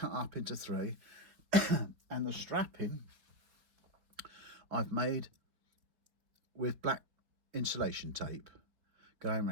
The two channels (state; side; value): late; left; 4.4 ms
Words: up into 3, and the strapping I've made with black insulation tape going